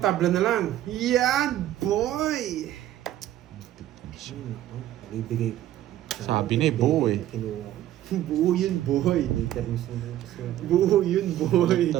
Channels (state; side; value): quieter; left; 13.0 dB